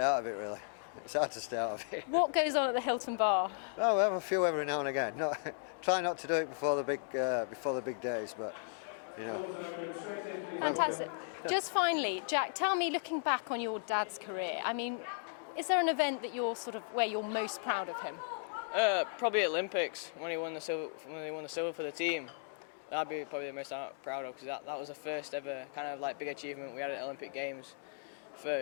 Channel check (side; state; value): right; silent; digital silence